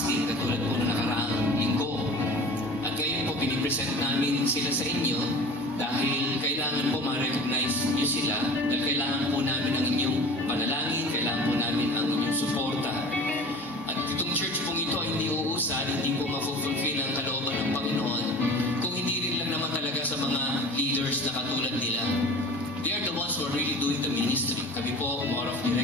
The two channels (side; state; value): both; normal; correlation 0.40